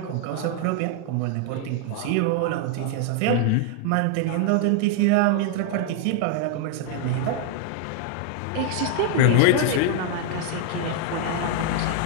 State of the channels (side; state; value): both; different; correlation 0.00